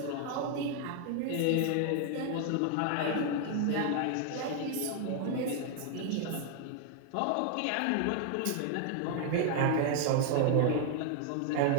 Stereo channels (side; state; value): both; different; correlation 0.00